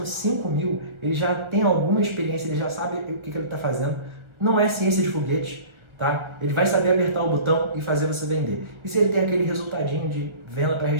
5 mil, ele já tem alguma experiência, ele já sabe o que ele está fazendo. Não é ciência de foguete. Tá? Ele vai saber apertar o botão e fazer você vender. E se ele tem aquele resultadinho de venda para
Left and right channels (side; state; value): left; late; 1.4 ms